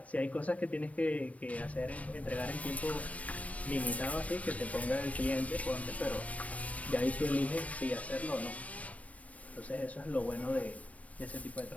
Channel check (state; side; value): late; right; 0.067 ms